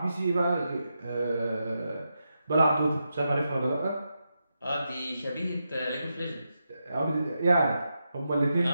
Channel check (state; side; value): inverted; both; correlation -0.86